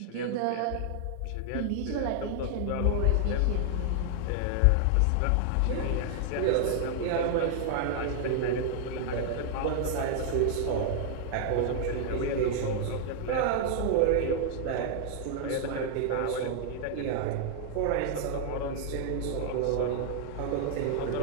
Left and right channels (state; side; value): different; both; correlation 0.00